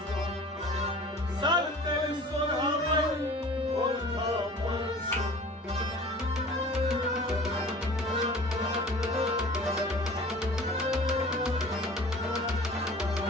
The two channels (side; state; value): both; normal; correlation 0.43